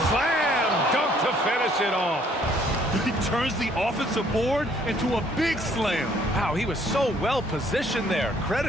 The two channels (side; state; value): both; normal; correlation 0.62